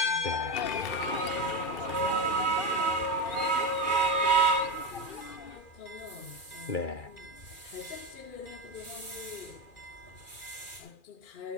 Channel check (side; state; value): right; late; 2.4 ms